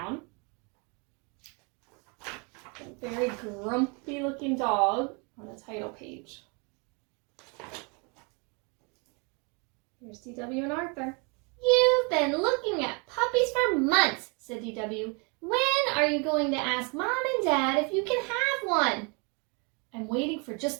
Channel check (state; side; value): quieter; left; 33.0 dB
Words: A very grumpy looking dog on the title page. Here's DW and Arthur. You've been looking at puppies for months, said DW. When are you going to ask Mom and Dad if you can have one? I'm waiting for